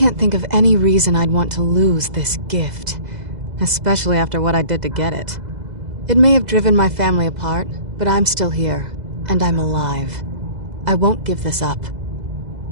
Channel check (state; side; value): late; left; 2.0 ms